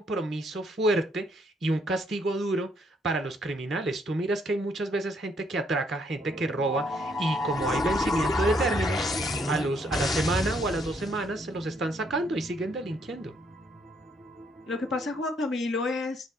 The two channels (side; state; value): both; normal; correlation 0.70